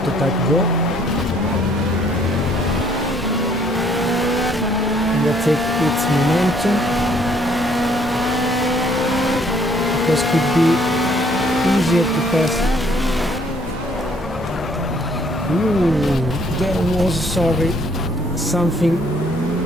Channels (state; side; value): normal; both; correlation 0.63